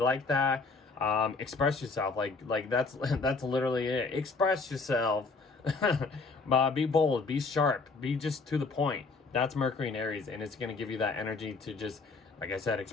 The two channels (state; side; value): quieter; right; 4.1 dB